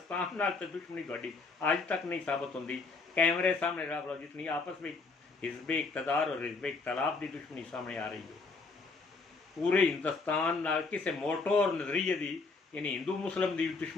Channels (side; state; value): right; quieter; 4.0 dB